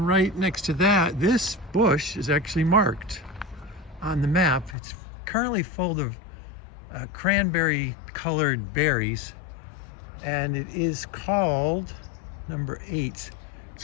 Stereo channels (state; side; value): drops out; right; at 4.8 s